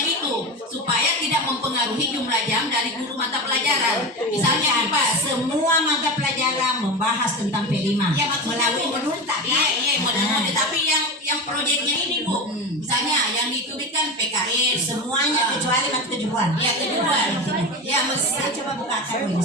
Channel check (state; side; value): normal; both; correlation 0.24